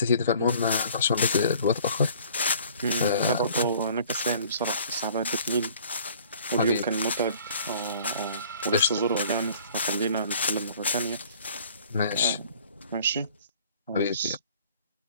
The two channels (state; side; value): inverted; both; correlation -0.52